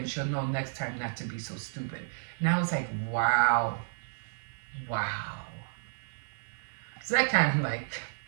she'll know next time not to be so stupid. And I was like, wow. So that kind of like,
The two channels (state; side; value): silent; left; 57 dB below the other